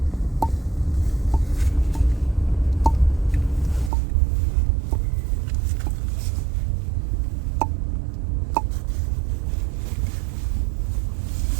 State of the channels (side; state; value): left; drops out; at 3.9 s